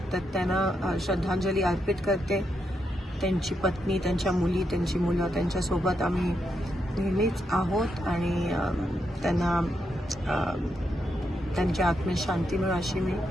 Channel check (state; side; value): normal; both; correlation 0.82